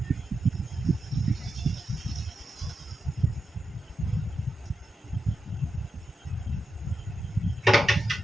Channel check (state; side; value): normal; both; correlation 0.88